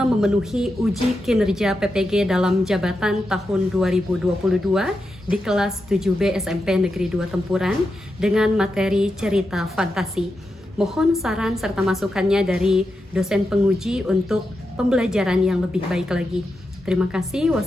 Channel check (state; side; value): normal; both; correlation 0.87